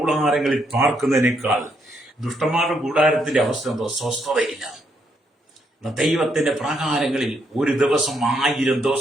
പാർക്കുന്നതിനേക്കാൾ, ദുഷ്ടന്മാരുടെ കൂടാരത്തിന്റെ അവസ്ഥ എന്തോ? സ്വസ്ഥതയില്ല. ദൈവത്തിന്റെ പ്രാകാരങ്ങളിൽ ഒരു ദിവസം 1000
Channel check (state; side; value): normal; both; correlation 0.76